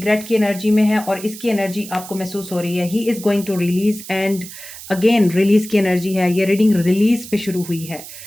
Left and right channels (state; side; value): noise; right; hiss, 14 dB below the sound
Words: की एनर्जी में है और इसकी एनर्जी आपको महसूस हो रही है। He is going to release and again release की एनर्जी है। ये रीडिंग रिलीज पे शुरू हुई है।